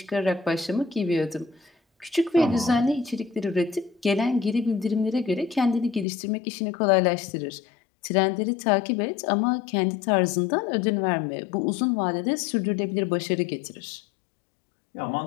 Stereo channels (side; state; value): right; drops out; at 6.1 s